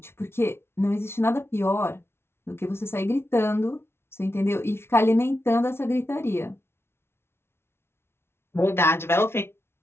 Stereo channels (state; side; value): late; right; 0.12 ms